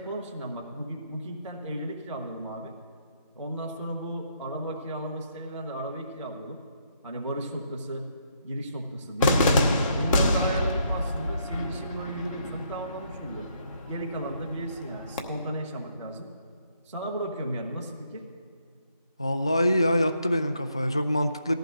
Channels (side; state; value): both; inverted; correlation -0.73